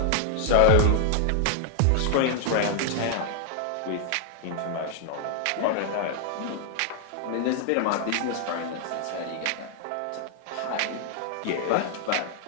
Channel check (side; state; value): both; different; correlation -0.01